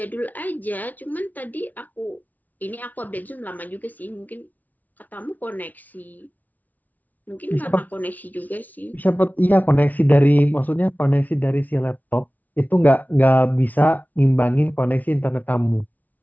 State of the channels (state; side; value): late; right; 0.078 ms